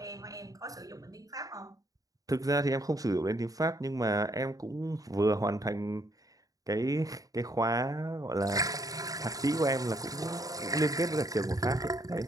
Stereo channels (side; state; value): left; late; 0.17 ms